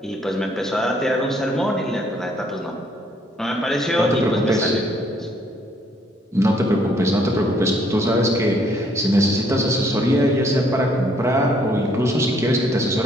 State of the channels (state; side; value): normal; both; correlation 0.66